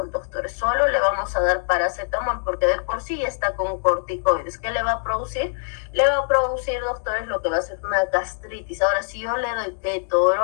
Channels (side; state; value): right; silent; digital silence